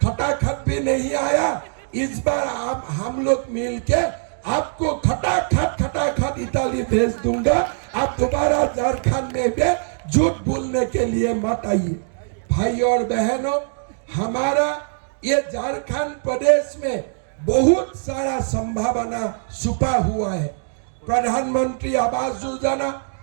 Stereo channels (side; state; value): left; silent; digital silence